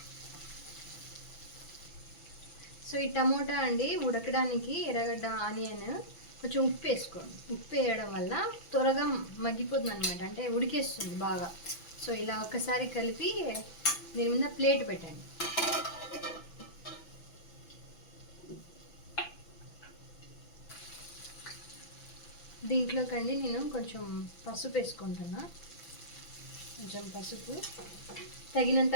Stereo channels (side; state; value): right; late; 6.0 ms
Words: సో ఈ టమోటా అండి ఉడకడానికి, ఎర్రగడ్డ, ఆనియన్, కొంచెం ఉప్పు వేసుకోండి. ఉప్పు వేయడం వల్ల త్వరగా మగ్గిపోతుంది అనమాట, అంటే ఉడికేస్తుంది బాగా. సో ఇలా ఒకసారి కలిపి దీని మీద ప్లేట్ పెట్టండి. దీంట్లోకండి నేను కొంచెం పసుపు వేసుకుంటున్నా, కొంచెం పసుపు, తగినంత